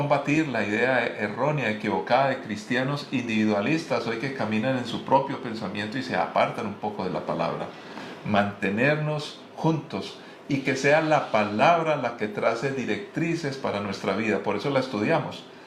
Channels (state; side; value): identical; both; correlation 1.00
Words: la idea errónea, equivocada de cristianos individualistas hoy que caminan en su propio pensamiento y se apartan un poco de la palabra. Mantenernos juntos y que sea la palabra la que trace directrices para nuestra vida. Por eso la estudiamos.